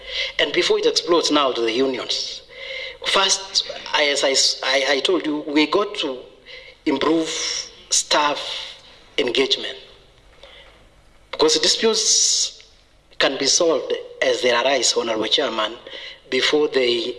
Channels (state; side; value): identical; both; correlation 1.00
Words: And before it explodes now to the unions. First, as I told you, we got to improve staff engagement, because disputes can be solved as they arise, Honorable Chairman, before they